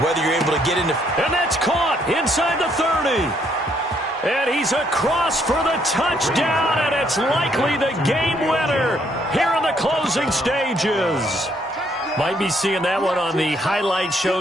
whether you're able to get into... And that's caught inside the 30. And he's across for the touchdown, and it's likely the game winner here in the closing stages. Might be seeing that one on the highlight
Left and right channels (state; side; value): normal; both; correlation 0.70